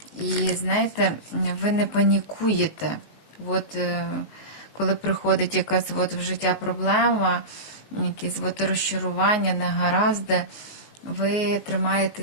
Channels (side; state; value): right; late; 19 ms